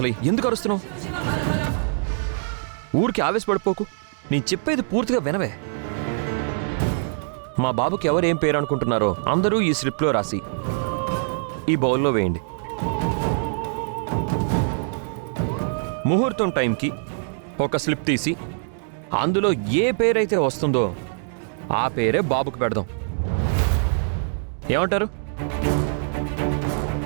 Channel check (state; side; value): silent; left; digital silence